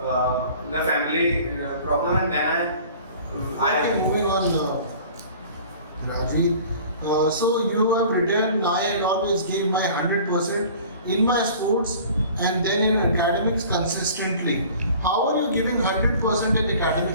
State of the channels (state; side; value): inverted; both; correlation -0.46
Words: the family problem, and then Okay, moving on, Rajver. So you have written, I had always gave my 100% in my sports and then in academics consistently. How are you giving 100% in